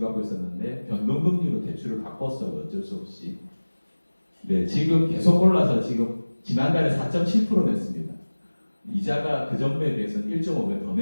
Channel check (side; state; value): both; inverted; correlation -1.00